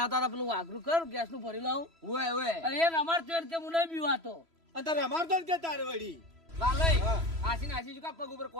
હતા પેલું વાઘરું કર ગેસ નું ભરી લાવું ઓય ઓય અને એ અમાર તો કે હું નહીં બીવાતો અને તારે અમારતો જ કે તારે વળી લાલે હા. આશી નાસી શું કા પગ ઉપર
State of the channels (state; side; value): late; left; 3.0 ms